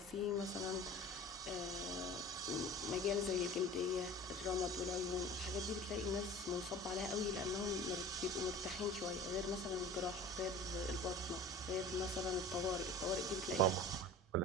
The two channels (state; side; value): normal; both; correlation 0.40